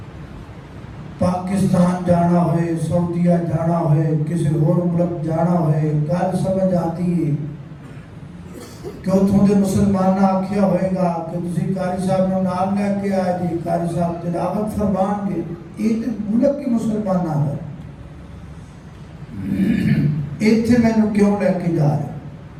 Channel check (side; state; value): both; identical; correlation 1.00